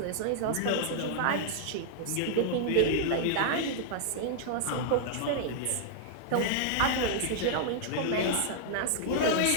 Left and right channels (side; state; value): both; different; correlation -0.01